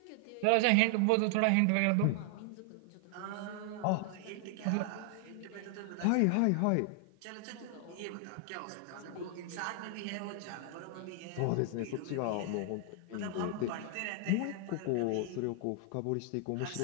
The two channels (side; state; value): both; different; correlation 0.00